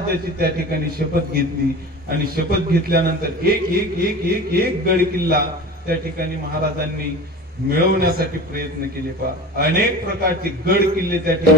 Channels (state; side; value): normal; both; correlation 0.34